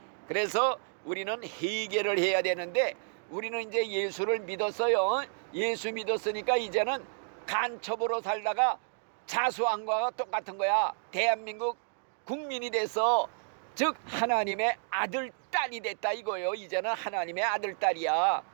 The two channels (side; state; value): left; silent; digital silence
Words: 그래서 우리는 회개를 해야 되는데, 우리는 이제 예수를 믿었어요. 예수 믿었으니까 이제는 간첩으로 살다가 자수한 거와 똑같은 거야. 대한민국 국민이 돼서, 즉 하나님의 아들, 딸이 됐다 이거예요. 이제는 하나님의 아들, 딸이야.